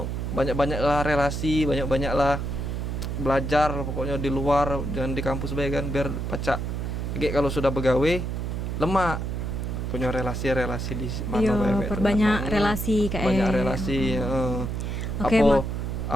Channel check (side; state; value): right; noise; hum, 3 dB below the sound